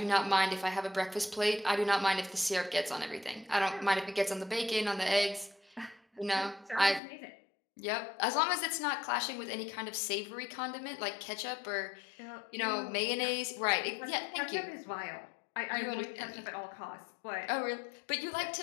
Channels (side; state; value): right; drops out; at 7.0 s